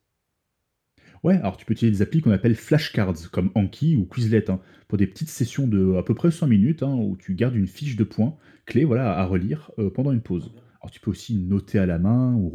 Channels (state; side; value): identical; both; correlation 1.00